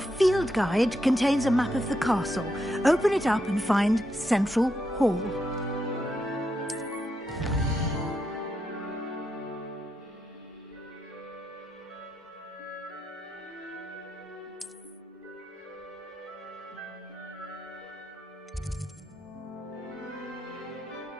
guide contains a map of the castle. Open it up and find Central Hall.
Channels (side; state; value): both; normal; correlation 0.82